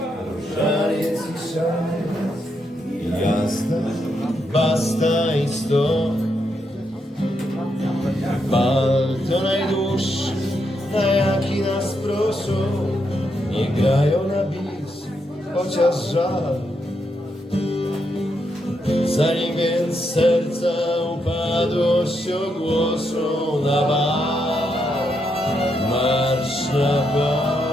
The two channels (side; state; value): both; normal; correlation 0.80